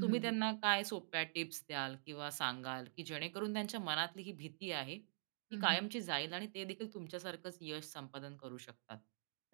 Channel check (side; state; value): left; silent; digital silence